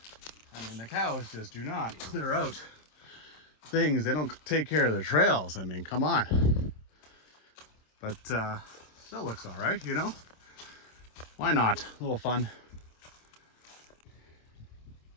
I mean, the cows just do not clear out things. They don't take care of their trails. I mean, come on. But still looks all right, you know? Why not? A little fun.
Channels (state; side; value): late; right; 26 ms